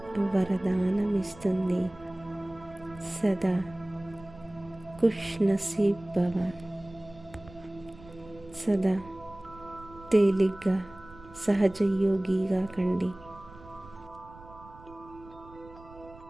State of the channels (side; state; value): right; noise; rumble, 20 dB below the sound